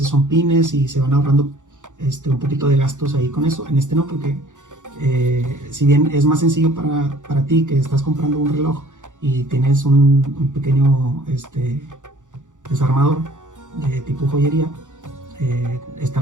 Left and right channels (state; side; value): late; left; 0.86 ms